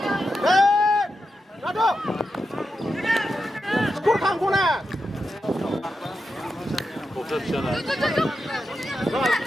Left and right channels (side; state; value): both; normal; correlation 0.88